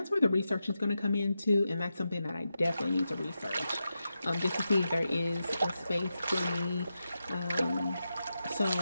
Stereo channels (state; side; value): inverted; both; correlation -0.89